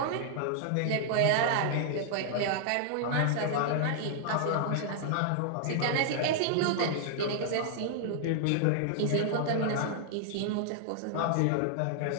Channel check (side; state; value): both; different; correlation 0.00